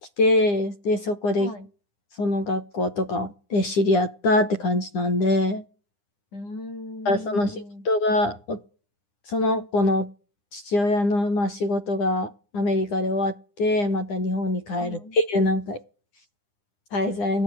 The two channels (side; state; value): right; late; 9.9 ms